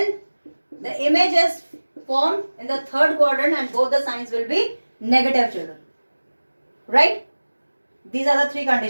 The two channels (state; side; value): inverted; both; correlation -1.00